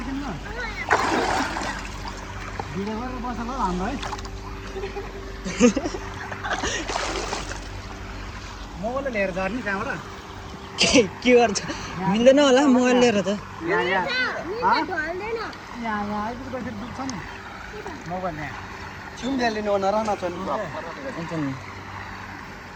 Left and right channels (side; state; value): both; identical; correlation 1.00